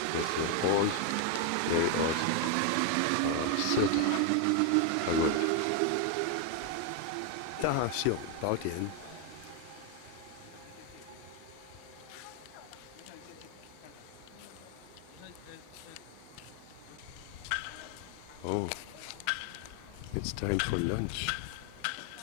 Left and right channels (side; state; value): both; different; correlation 0.01